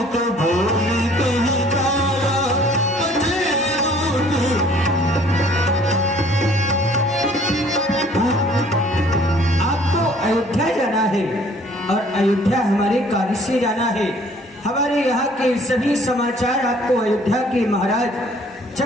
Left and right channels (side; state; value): both; normal; correlation 0.56